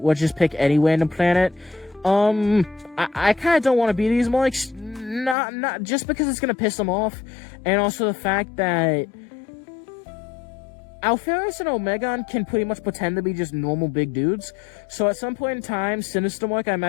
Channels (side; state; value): right; drops out; at 5.4 s